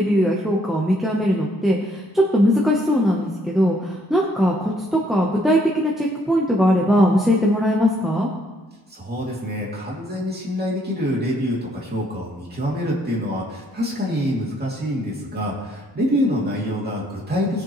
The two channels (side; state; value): both; normal; correlation 0.68